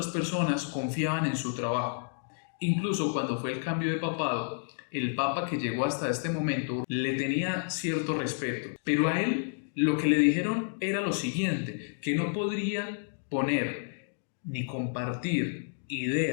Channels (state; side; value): silent; right; digital silence